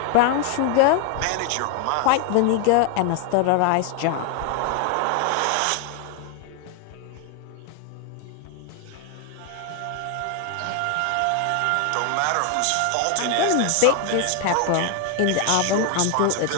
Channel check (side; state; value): both; different; correlation 0.01